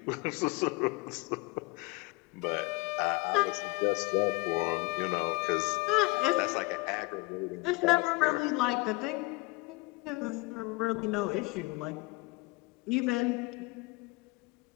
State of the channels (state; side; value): quieter; right; 24.6 dB